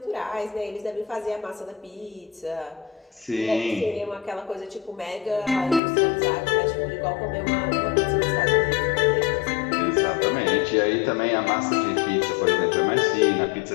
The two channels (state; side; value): drops out; right; at 5.8 s